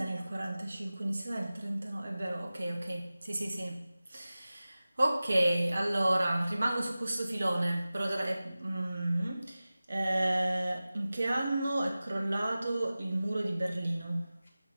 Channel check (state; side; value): inverted; both; correlation -0.96